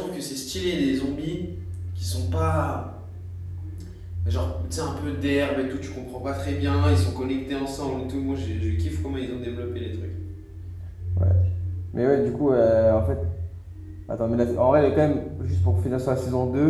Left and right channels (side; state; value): both; identical; correlation 1.00